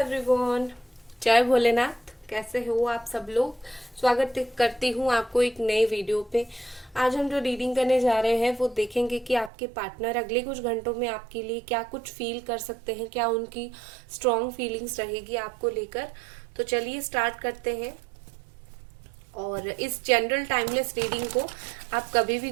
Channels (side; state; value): left; drops out; at 9.5 s